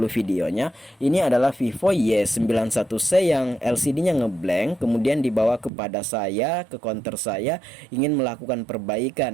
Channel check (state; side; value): drops out; left; at 5.7 s